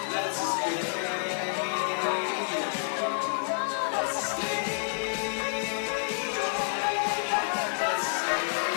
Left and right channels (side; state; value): right; silent; 59 dB below the other